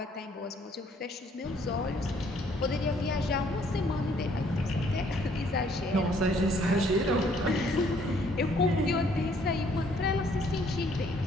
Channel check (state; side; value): normal; both; correlation 0.63